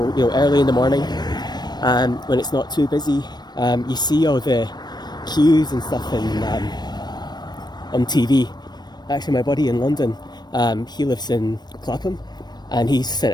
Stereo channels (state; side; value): late; right; 0.20 ms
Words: early in the morning, when it's not too busy, you see all the queues and stuff on TV. Actually, my buddy in London, he lives in Clapham, and he's